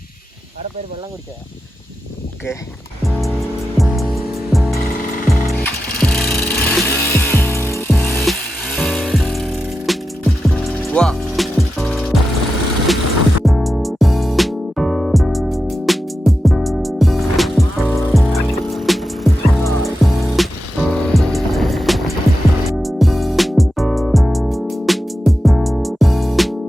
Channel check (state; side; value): normal; both; correlation 0.90